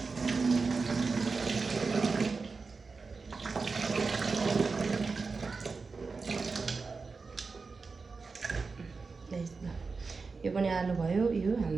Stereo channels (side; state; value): left; quieter; 4.4 dB